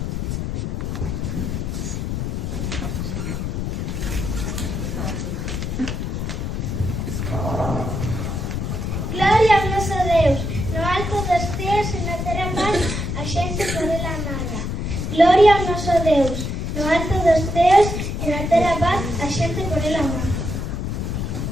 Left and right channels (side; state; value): left; noise; rumble, 2 dB below the sound